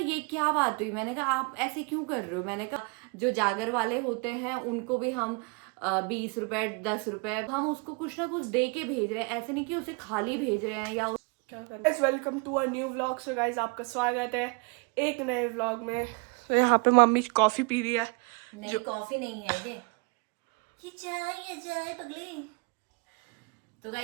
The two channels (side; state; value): left; quieter; 31.7 dB